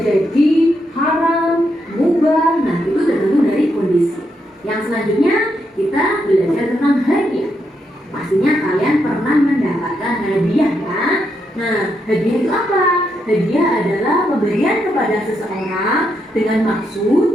haram, mubah. Nah, itu tergantung dari kondisi. Yang selanjutnya kita belajar tentang hadiah. Pastinya kalian pernah mendapatkan hadiah ya. Nah, hadiah itu apa? Hadiah adalah pemberian kepada seseorang dengan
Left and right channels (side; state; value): both; normal; correlation 0.80